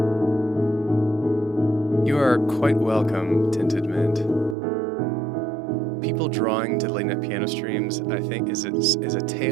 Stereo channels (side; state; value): left; drops out; at 4.5 s